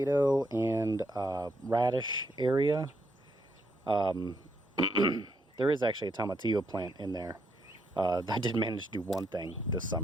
and radish area. There is actually a tomatillo plant in there. I did manage to do one thing this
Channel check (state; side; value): normal; both; correlation 0.77